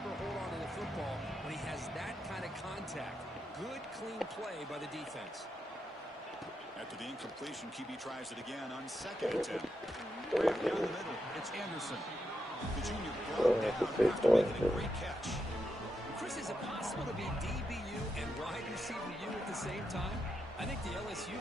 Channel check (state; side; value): normal; both; correlation 0.84